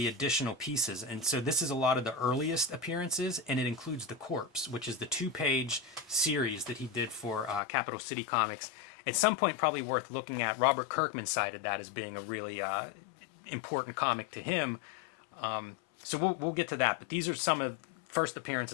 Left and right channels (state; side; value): drops out; right; at 7.6 s